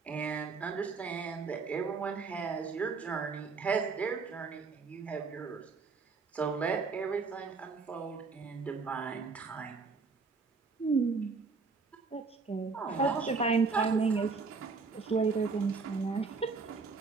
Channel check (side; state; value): left; quieter; 4.6 dB